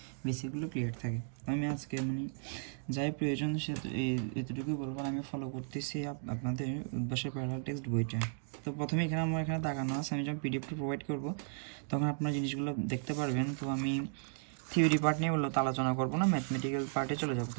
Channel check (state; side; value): silent; left; digital silence